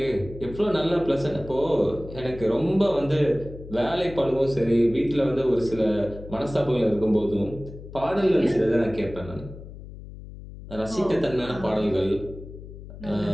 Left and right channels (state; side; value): noise; left; hum, 14 dB below the sound